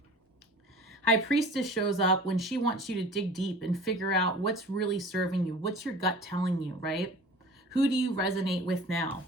High Priestess shows up when she wants you to dig deep and figure out what's really serving you. What's your gut telling you, right? Who do you resonate with now?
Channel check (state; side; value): normal; both; correlation 0.42